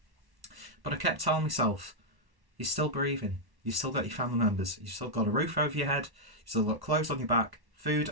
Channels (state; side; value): late; left; 1.1 ms